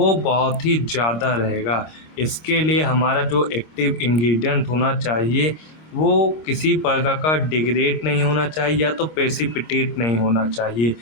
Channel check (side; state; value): right; late; 26 ms